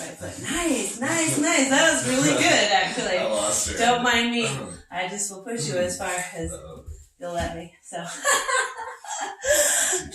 foot. Nice. That was really good, actually. I lost her. Don't mind me. I just will push you as far as you'll let me. So.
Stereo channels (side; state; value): both; identical; correlation 1.00